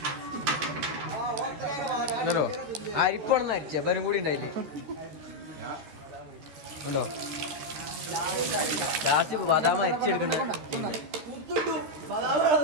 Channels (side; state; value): left; late; 13 ms